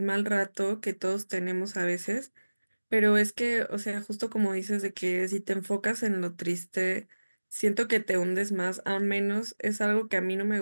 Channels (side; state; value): both; inverted; correlation -1.00